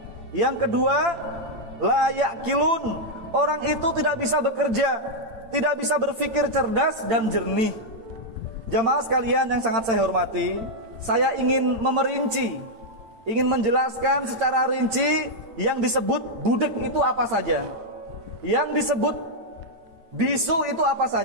Yang kedua, la ya'qilun, orang itu tidak bisa bekerja, tidak bisa berpikir cerdas dan jernih. Jamaah sekalian yang sangat saya hormati, saya ingin memerinci, ingin menjelaskan secara rinci yang disebut budek itu apa saja, yang disebut bisu itu apa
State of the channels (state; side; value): late; left; 8.8 ms